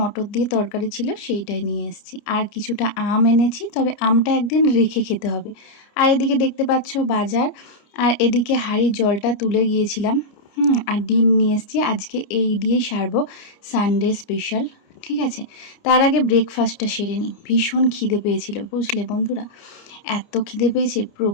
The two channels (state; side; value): late; right; 29 ms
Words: দিয়ে তরকারি ছিল, সেইটাই নিয়ে এসেছি। আর কিছুটা আম এনেছি, তবে আমটা একদিন রেখে খেতে হবে। আর এদিকে দেখতে পাচ্ছ বাজার, আর এদিকে হাঁড়ির জলটা তুলে গিয়েছিলাম। আর ডিম নিয়ে এসেছি, আজকে এই দিয়েই সারবো, সানডে স্পেশাল, ঠিক আছে। তার আগে ব্রেকফাস্টটা সেরে নিই, ভীষণ খিদে পেয়েছিল, বুঝলে বন্ধুরা। এত খিদে পেয়েছে,